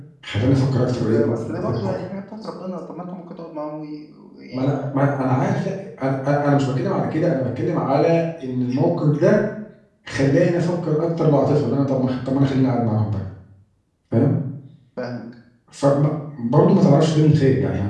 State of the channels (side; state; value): both; identical; correlation 1.00